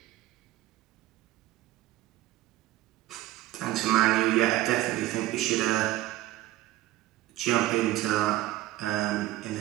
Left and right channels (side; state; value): left; quieter; 16.1 dB